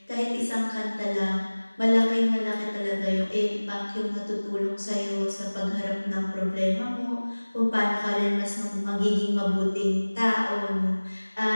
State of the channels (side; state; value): both; inverted; correlation -1.00